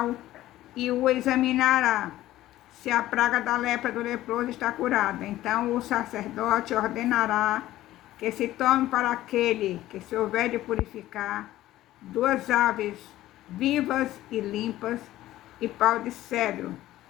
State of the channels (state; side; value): quieter; right; 14.9 dB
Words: e o examinará. Se a praga da lepra do leproso está curada, então o sacerdote ordenará que se tome para aquele que se houver de purificar 2 aves vivas e limpas, e pau de cedro,